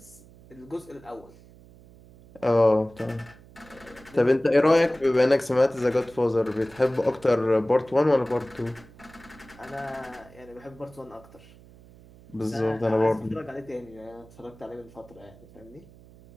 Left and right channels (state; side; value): noise; right; hum, 23 dB below the sound